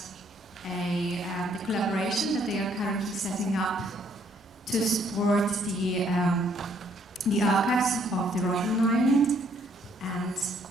the collaboration that they are currently setting up to support the archives of the Robben Island. And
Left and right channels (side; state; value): both; normal; correlation 0.67